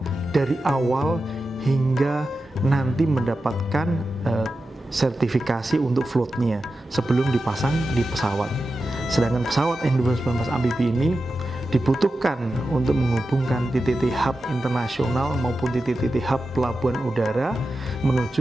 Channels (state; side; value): normal; both; correlation 0.91